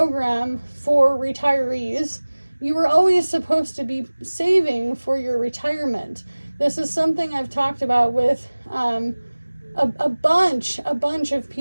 for retirees. You were always supposed to be saving for your retirement. This is something I've talked about with a bunch of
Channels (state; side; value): inverted; both; correlation -1.00